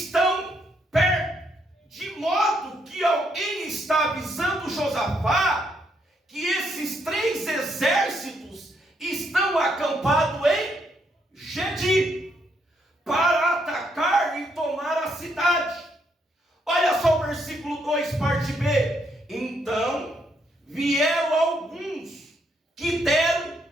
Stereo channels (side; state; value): both; normal; correlation 0.75